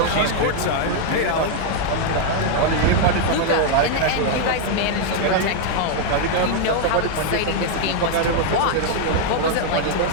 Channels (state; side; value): different; both; correlation 0.00